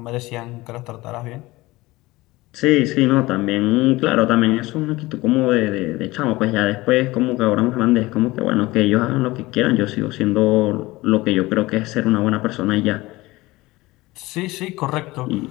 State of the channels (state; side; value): quieter; right; 20.0 dB